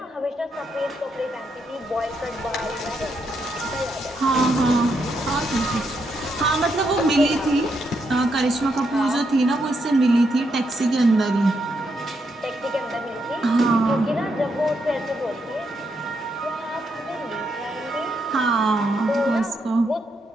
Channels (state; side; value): normal; both; correlation 0.79